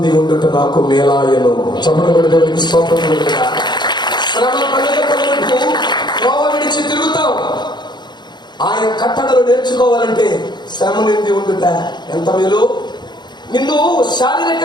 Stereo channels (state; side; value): late; right; 0.21 ms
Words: ఉండుట నాకు మేలాయను. చెప్పబడి దేవుడికి స్తోత్రం. శ్రమ కలుదొక్క మునుపు త్రోవ విడిచి తిరుగుతాం. ఆయన కట్టడలు నేర్చుకోవాలంటే శ్రమ నుండి ఉండుట ఎంత మేలు. నిన్ను